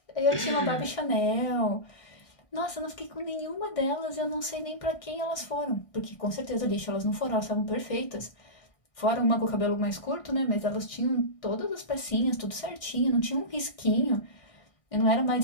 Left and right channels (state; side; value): late; right; 1.6 ms